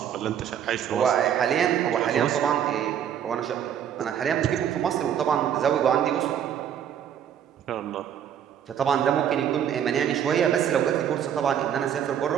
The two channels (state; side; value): quieter; left; 9.3 dB